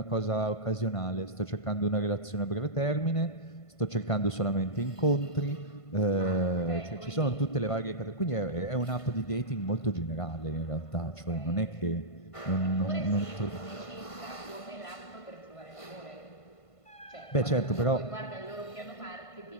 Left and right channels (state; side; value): late; right; 1.5 ms